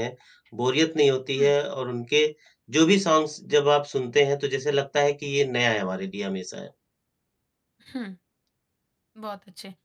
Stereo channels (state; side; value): identical; both; correlation 1.00